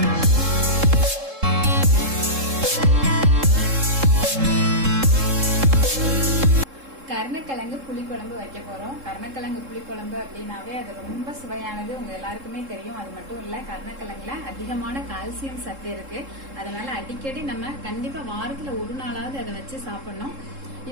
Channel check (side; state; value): left; late; 3.7 ms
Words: கருணைக்கிழங்கு புளிக்குழம்பு வைக்க போறோம். கருணைக்கிழங்கு புளிக்குழம்பு அப்படின்னாவே அது ரொம்ப சுவையானது, உங்க எல்லாருக்குமே தெரியும். அது மட்டும் இல்ல, கருணைக்கிழங்குல அதிகமான கால்சியம் சத்து இருக்கு. அதனால அடிக்கடி நம்ம கண்டிப்பா வாரத்துல ஒரு நாளாவது அதை வச்சு சாப்பிடணும்.